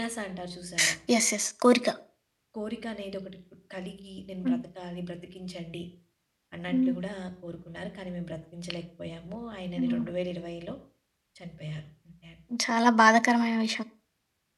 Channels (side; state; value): both; identical; correlation 1.00